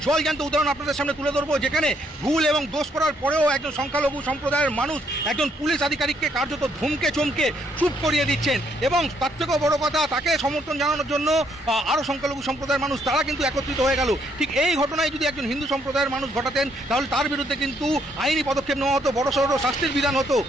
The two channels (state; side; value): normal; both; correlation 0.71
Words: জলজ্যান্ত উদাহরণ আপনাদের সামনে তুলে ধরবো, যেখানে ভুল এবং দোষ করার পরেও একজন সংখ্যালঘু সম্প্রদায়ের মানুষ একজন পুলিশ আধিকারিককে কার্যত ধমকে চমকে চুপ করিয়ে দিচ্ছেন। এবং তার থেকেও বড় কথা, তাকে সমর্থন জানানোর জন্য আরও সংখ্যালঘু সম্প্রদায়ের মানুষ তারা কিন্তু একত্রিত হয়ে গেল। ঠিক এই ঘটনায় যদি একজন হিন্দু সম্প্রদায়ের মানুষ ঘটাতেন তাহলে তার বিরুদ্ধে কিন্তু আইনি পদক্ষেপ নেওয়া হতো, বড়সড় শাস্তির বিধান হতো।